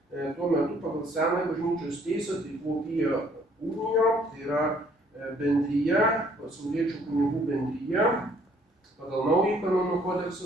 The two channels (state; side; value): normal; both; correlation 0.62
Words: tuo metu pagal senąją bažnyčios teisę tai buvo Pio Unijo, tai yra bendrija, pasauliečių kunigų bendrija, pagal naująjį kanonų kodeksą,